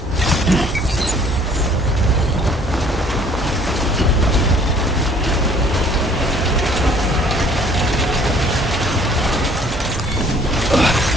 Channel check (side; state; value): both; normal; correlation 0.56